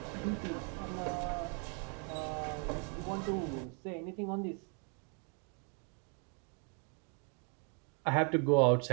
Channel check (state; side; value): quieter; left; 39.6 dB